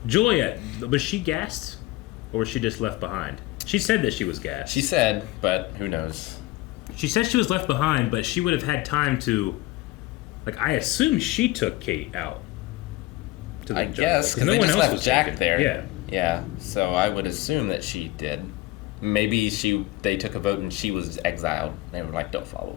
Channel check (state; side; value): quieter; right; 18.6 dB